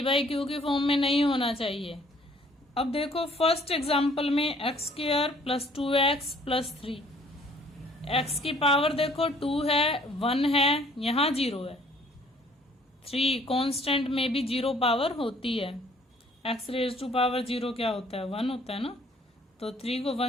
बाई क्यू की फॉर्म में नहीं होना चाहिए. अब देखो फर्स्ट एग्जांपल में x² plus 2x plus 3, x की पावर देखो 2 है, 1 है, यहाँ 0 है. 3 कांस्टेंट में भी 0 पावर होती है. x रेज टू पावर 0 क्या होता है? 1 होता है ना. तो 3 को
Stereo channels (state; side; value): normal; both; correlation 0.59